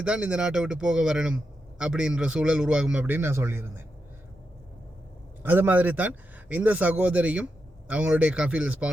தான் இந்த நாட்டை விட்டு போக வரணும் அப்படின்ற சூழல் உருவாகும் அப்படின்னு நான் சொல்லியிருந்தேன். அது மாதிரி தான் இந்த சகோதரியும் அவங்களுடைய கஃபீல்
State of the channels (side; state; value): both; normal; correlation 0.86